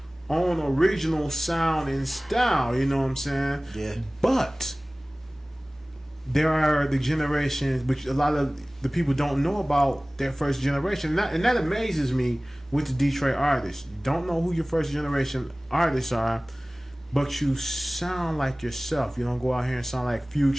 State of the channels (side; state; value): both; normal; correlation 0.98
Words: own original sound and style, you know what I'm saying? Yeah. But there are the generations, which a lot of the people don't know about their first generation. And that amazes me with the Detroit artists. You don't know who your first generation artists are, but you sound like yourself. You don't go out here and sound like